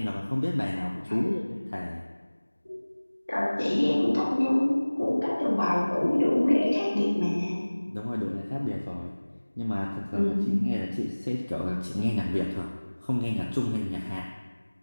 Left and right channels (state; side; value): inverted; both; correlation -1.00